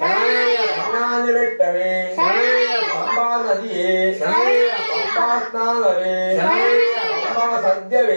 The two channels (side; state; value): both; inverted; correlation -1.00